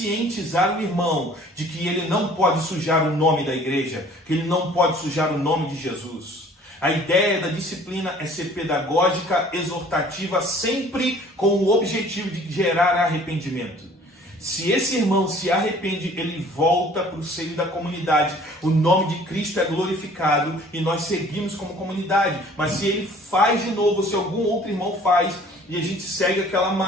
o irmão de que ele não pode sujar o nome da igreja, que ele não pode sujar o nome de Jesus. A ideia da disciplina é ser pedagógica, exortativa, sempre com o objetivo de gerar arrependimento. Se esse irmão se arrepende, ele volta para o seio da comunidade. O nome de Cristo é glorificado e nós seguimos como comunidade. Mas se ele faz de novo, se algum outro irmão faz, e a gente segue aquela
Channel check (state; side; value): normal; both; correlation 0.52